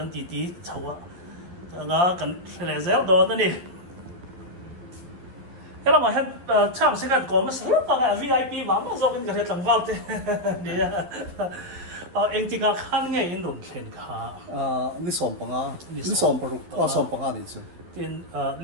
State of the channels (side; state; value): left; late; 12 ms